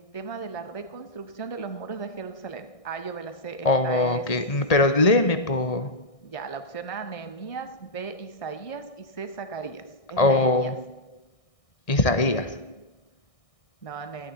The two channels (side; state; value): right; late; 1.6 ms